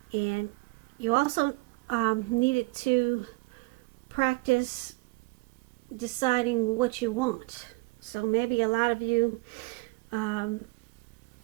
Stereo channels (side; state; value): left; quieter; 25.8 dB